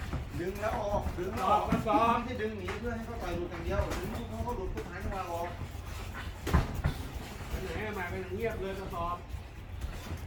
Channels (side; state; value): both; identical; correlation 1.00